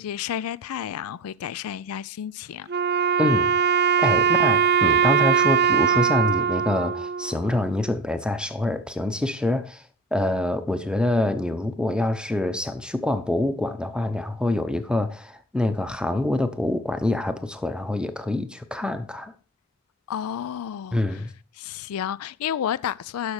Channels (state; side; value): normal; both; correlation 0.33